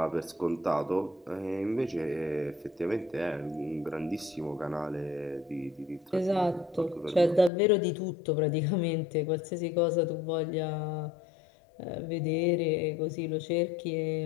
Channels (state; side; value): drops out; right; at 7.5 s